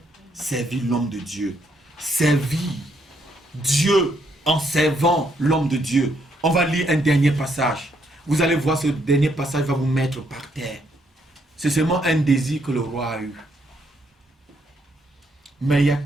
Servir l'homme de Dieu. Servir Dieu en servant l'homme de Dieu. On va lire un dernier passage. Vous allez voir, ce dernier passage va vous mettre par terre. C'est seulement un désir que le roi a eu. Mais il y a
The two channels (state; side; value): normal; both; correlation 0.73